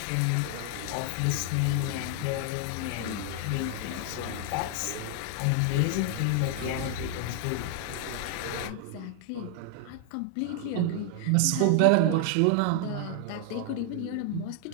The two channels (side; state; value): both; different; correlation 0.00